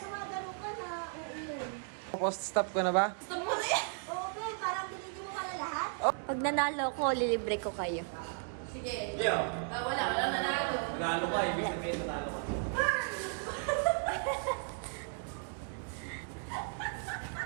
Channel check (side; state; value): left; silent; 54 dB below the other